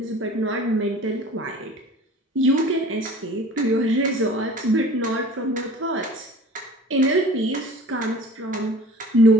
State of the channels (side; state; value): both; normal; correlation 0.44